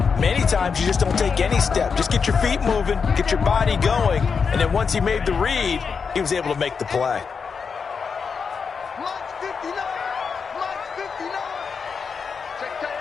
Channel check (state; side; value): quieter; right; 5.7 dB